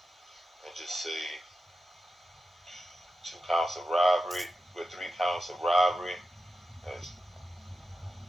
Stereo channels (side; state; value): both; normal; correlation 0.90